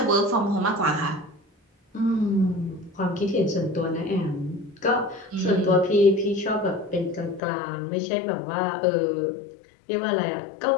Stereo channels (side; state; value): right; drops out; at 7.4 s